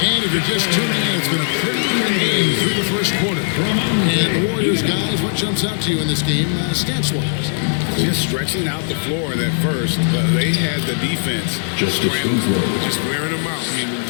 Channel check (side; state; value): right; silent; digital silence